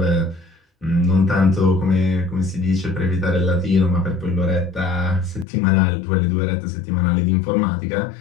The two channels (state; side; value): drops out; right; at 5.5 s